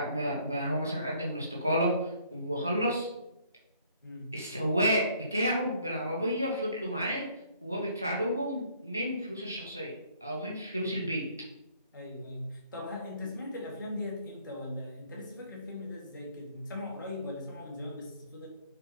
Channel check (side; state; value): both; inverted; correlation -0.62